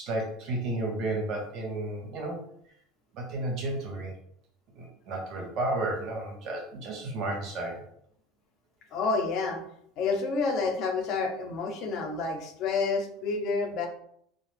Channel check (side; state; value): both; normal; correlation 0.38